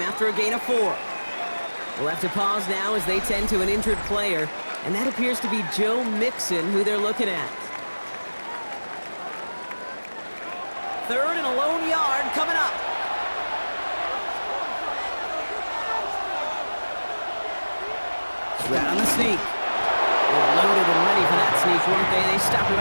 after a gain of 4. We'll have to pause now as they tend to an injured player, and that appears to be Joe Mixon, who they're looking at. 3rd and a lone yard coming up. Right on the sneak. They're loaded and ready for that sneak, weren't they? They stopped him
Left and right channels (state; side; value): inverted; both; correlation -1.00